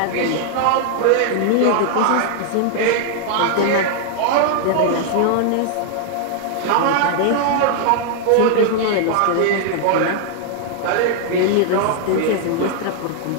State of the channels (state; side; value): different; both; correlation 0.00